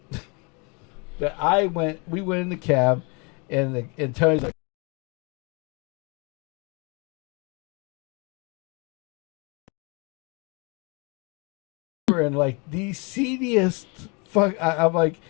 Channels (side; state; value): right; quieter; 31.7 dB